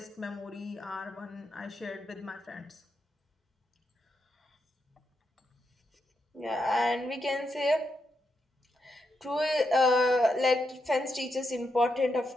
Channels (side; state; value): both; normal; correlation 0.83